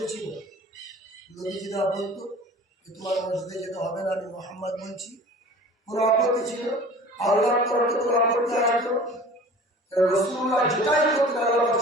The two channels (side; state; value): both; normal; correlation 0.43